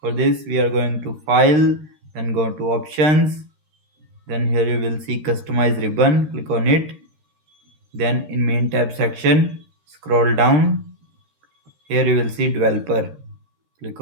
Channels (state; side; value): late; left; 13 ms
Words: this we are going to file, then go to options, then here you will see customize ribbon, click on it. Then in main tab section, scroll down. Here you will see developer. Click